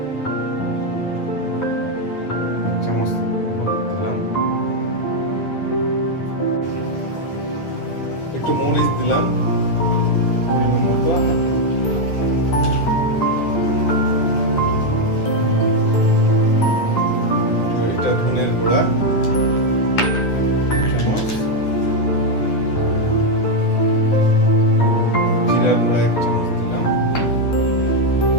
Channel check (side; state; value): right; late; 9.8 ms